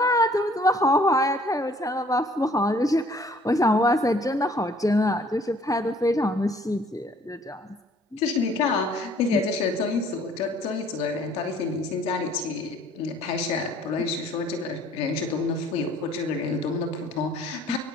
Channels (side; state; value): both; normal; correlation 0.57